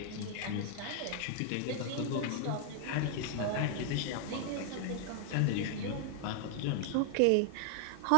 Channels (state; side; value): different; both; correlation 0.00